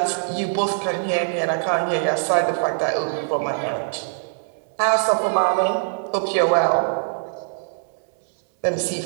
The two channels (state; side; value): silent; left; 63 dB below the other